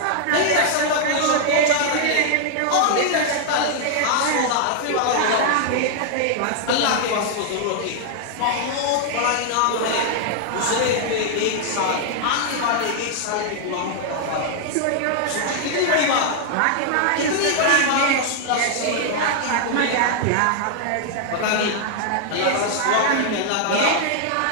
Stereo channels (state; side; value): different; both; correlation 0.00